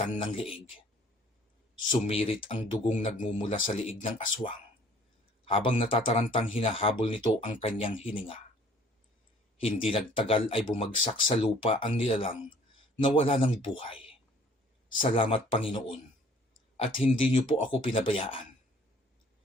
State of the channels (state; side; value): normal; both; correlation 0.55